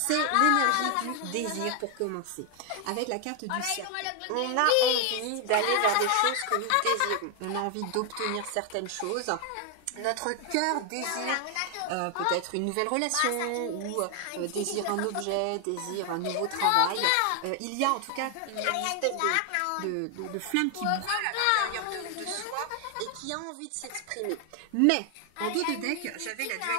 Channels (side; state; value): both; different; correlation 0.00